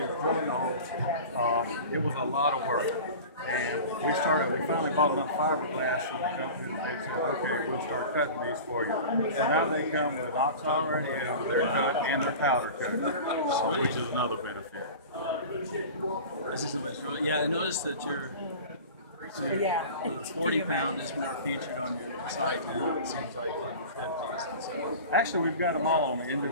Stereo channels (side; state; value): both; inverted; correlation -0.36